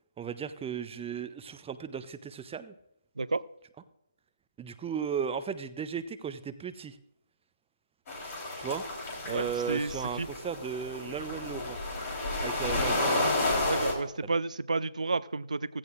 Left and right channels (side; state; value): both; inverted; correlation -0.50